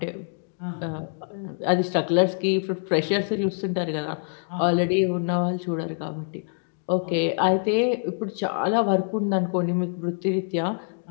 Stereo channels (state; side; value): silent; right; digital silence